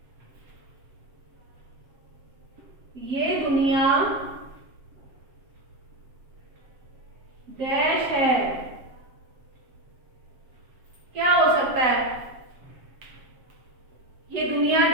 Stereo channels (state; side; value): late; left; 7.7 ms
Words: ये दुनिया डैश है। क्या हो सकता है? ये दुनिया